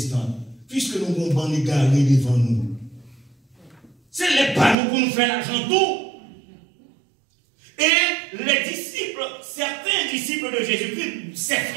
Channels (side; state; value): left; drops out; at 4.8 s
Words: puisque nous avons ban égaré devant nous. C'est les panneaux pour nous faire l'argent tout. Et les disciples, certains disciples de Jésus-Christ, ses